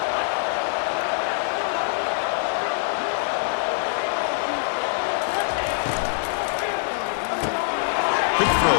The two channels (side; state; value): right; silent; digital silence